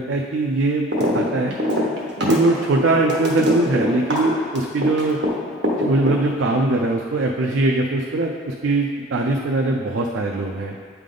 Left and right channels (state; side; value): normal; both; correlation 0.45